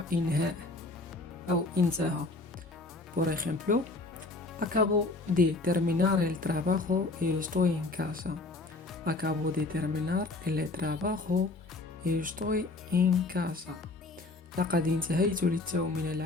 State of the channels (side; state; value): right; quieter; 3.2 dB